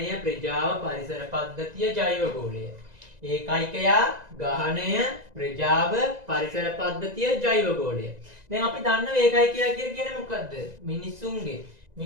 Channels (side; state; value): left; late; 1.9 ms